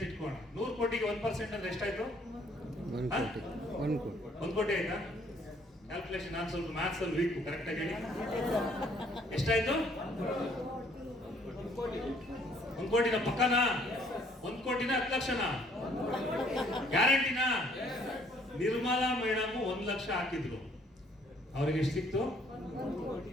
ಇಟ್ಕೋಣ. 100 ಕೋಟಿಗೆ 1% ಅಂದ್ರೆ ಎಷ್ಟಾಯ್ತು? 1 ಕೋಟಿ ಆಯ್ತಾ? ಕ್ಯಾಲ್ಕುಲೇಷನ್ ನಾನು ಸ್ವಲ್ಪ ಮ್ಯಾಥ್ಸ್ ಅಲ್ಲಿ ವೀಕ್, ಕರೆಕ್ಟ್ ಆಗಿ ಹೇಳಿ. ಎಷ್ಟಾಯ್ತು? 1 ಕೋಟಿನ ಪಕ್ಕನಾ? 1 ಕೋಟಿನ 10 ಲಕ್ಷನಾ? ಗ್ಯಾರಂಟಿನಾ? ನಿರ್ಮಲಾ ಮೇಡಮ್ 1 ಲಕ್ಷ ಹಾಕಿದ್ರು, ಅವ್ರಿಗೆ ಎಷ್ಟು ಸಿಕ್ತು?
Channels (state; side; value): normal; both; correlation 0.63